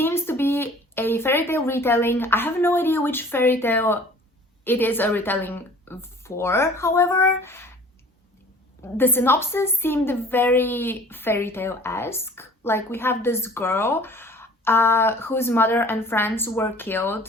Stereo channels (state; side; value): normal; both; correlation 0.48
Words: to be a fairy tale retelling. I have no idea which fairy tale it is a retelling for, however, the synopsis seemed very fairy tale-esque. Like, we have this girl whose mother and friends were killed